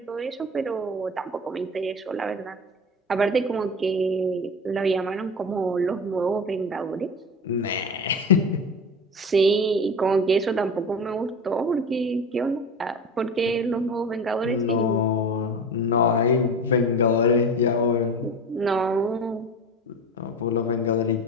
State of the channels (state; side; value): normal; both; correlation 0.30